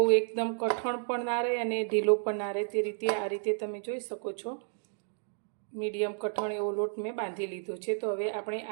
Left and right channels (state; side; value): silent; left; digital silence